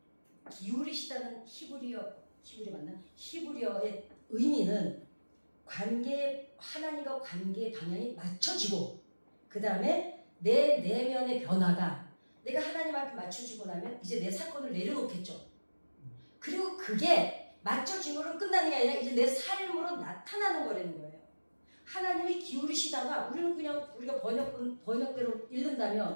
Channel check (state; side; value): inverted; both; correlation -1.00